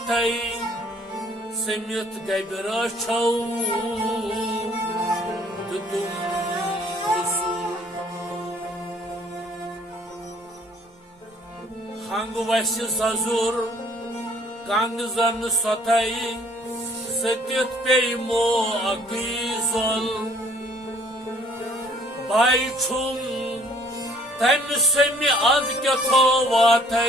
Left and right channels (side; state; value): both; normal; correlation 0.59